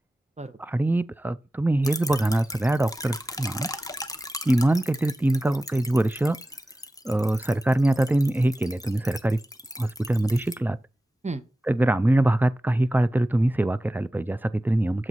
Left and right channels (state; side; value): normal; both; correlation 0.95